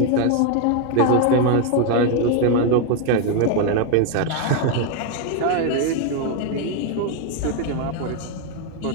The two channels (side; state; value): both; different; correlation 0.01